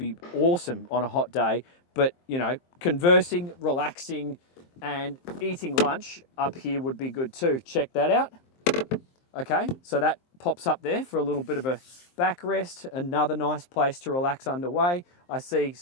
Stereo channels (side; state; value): right; late; 23 ms